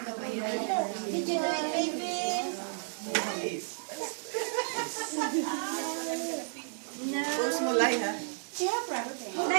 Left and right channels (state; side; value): silent; left; 56 dB below the other